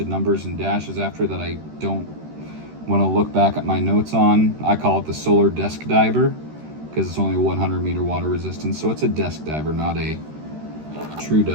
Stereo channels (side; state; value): left; late; 13 ms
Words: numbers and dashes after that I don't want to look back at my notes on. I call it the solar desk diver because it's only 100 meter water resistance. So it's a desk diver, not a true